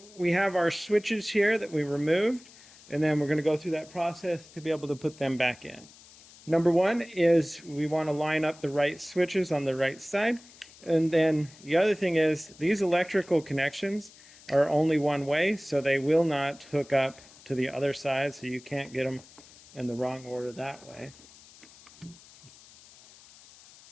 we have our switches here that we removed, and then we're going to go through that process to be able to put them back in. Number one is we want to line up the right switches on the right side. And then the other thing is these electrical connections are only one way, so they will not hook up to the other side, so you can't get them in the wrong order that way.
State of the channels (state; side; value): noise; left; hiss, 23 dB below the sound